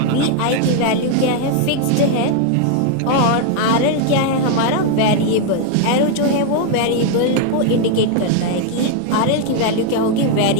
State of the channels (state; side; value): different; both; correlation 0.00